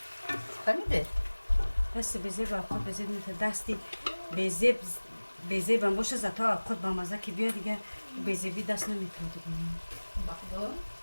Фаҳмиде? дасти безе ба алхот безе метавон. дасти безе бам боша зато алхот ба маза ки биё дига безеби даст наметавон дига. Бахдо.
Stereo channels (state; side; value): inverted; both; correlation -1.00